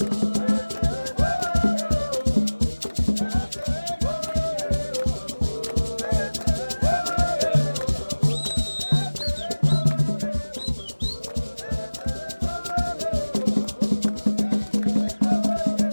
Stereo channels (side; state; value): both; inverted; correlation -1.00